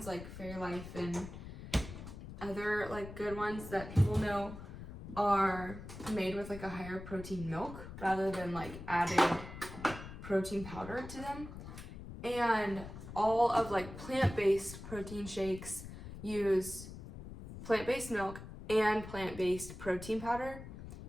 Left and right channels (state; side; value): noise; left; rumble, 12 dB below the sound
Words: like Fairlife and other like good ones that people know are made with like a higher protein milk rather than like adding protein powder to them. And all of like plant-based protein shakes use plant-based milk and plant-based protein powder.